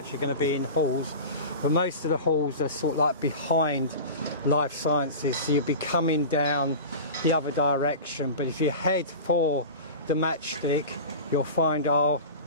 going to be in halls, but most of the halls are sort of like behind Life Sciences, so you'll be coming down the other direction. But if you head for the matchstick, you'll find our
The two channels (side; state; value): both; inverted; correlation -0.31